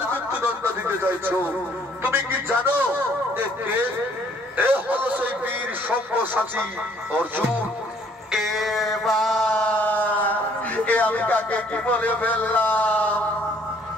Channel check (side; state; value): both; normal; correlation 0.61